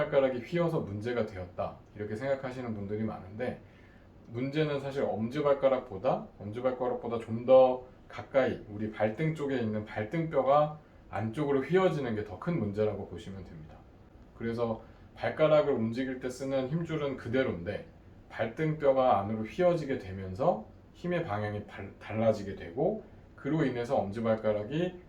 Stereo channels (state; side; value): identical; both; correlation 1.00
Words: 휘어서 문제가 되었다 이렇게 생각하시는 분들이 많은데, 문제는 사실 엄지발가락보다 좀 더 가까이 우리 발등 쪽에 있는 발등뼈가 안쪽으로 휘어지는 게 더 큰 문제라고 보시면 됩니다. 그래서 발가락을 움직일 때 쓰는 힘줄은 그대로인데 발등뼈가 안으로 휘어지게 되면서 힘의 방향이 달라지게 되고, 그로 인해서 엄지발가락이